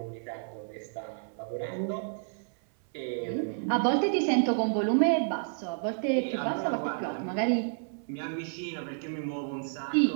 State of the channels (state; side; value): silent; left; 58 dB below the other